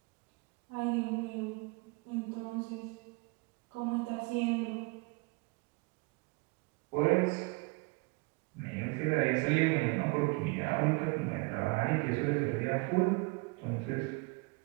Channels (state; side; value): quieter; left; 28.6 dB